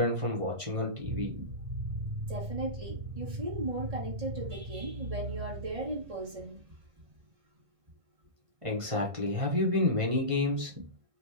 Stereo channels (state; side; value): late; left; 1.5 ms